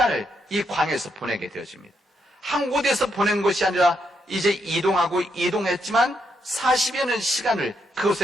이 광야에서 보내게 되어집니다. 한 곳에서 보낸 것이 아니라 이제 이동했지만 40여 년 시간을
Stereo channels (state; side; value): normal; both; correlation 0.79